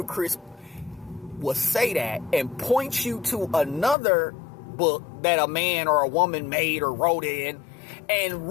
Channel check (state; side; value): drops out; right; at 4.0 s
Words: will say that and point you to another book that a man or a woman made or wrote in, and